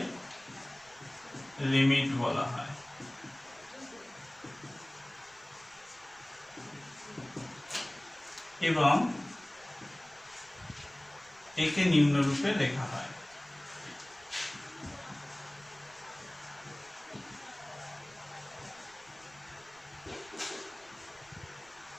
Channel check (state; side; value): noise; right; rumble, 27 dB below the sound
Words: লিমিট বলা হয়। এবং একে নিম্নরূপে লেখা হয়।